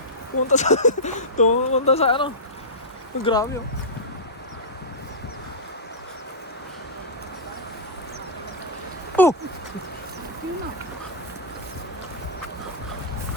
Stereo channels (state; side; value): normal; both; correlation -0.12